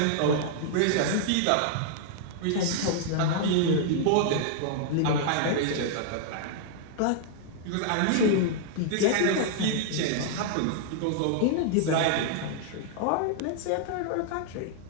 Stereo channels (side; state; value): both; different; correlation -0.01